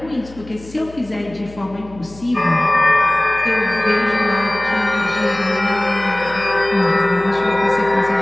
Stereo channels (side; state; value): left; noise; hum, 19 dB below the sound